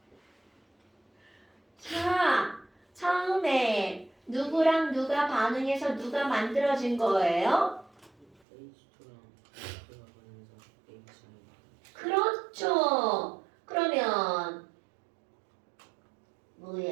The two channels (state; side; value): drops out; left; at 8.3 s